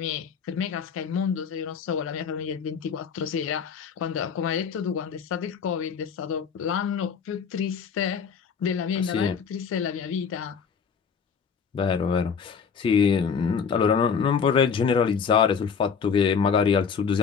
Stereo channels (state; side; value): quieter; right; 6.4 dB